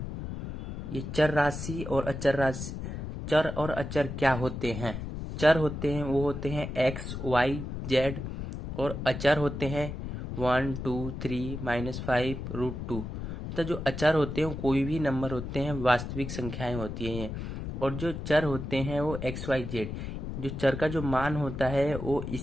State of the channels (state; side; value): noise; left; rumble, 7 dB below the sound